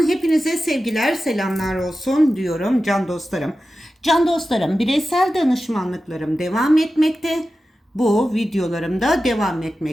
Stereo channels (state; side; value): normal; both; correlation 0.93